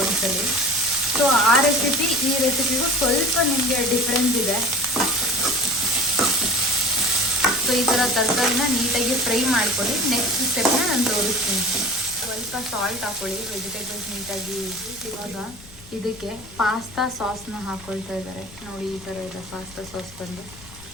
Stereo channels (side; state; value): left; noise; rumble, 20 dB below the sound